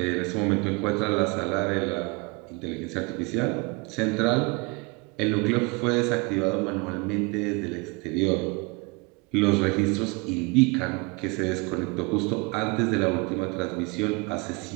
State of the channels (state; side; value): quieter; left; 28.6 dB